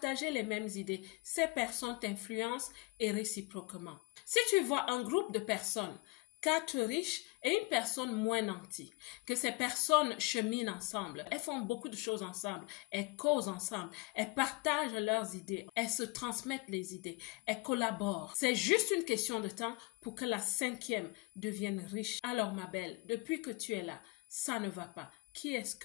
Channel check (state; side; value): quieter; right; 26.3 dB